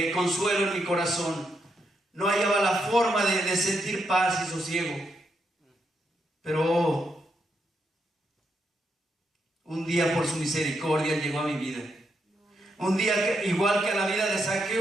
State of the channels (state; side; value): normal; both; correlation 0.81